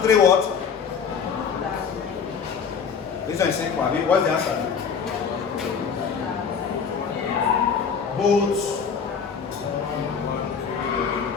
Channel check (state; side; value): quieter; right; 6.5 dB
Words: what? This one is simple. What's the answer? Both.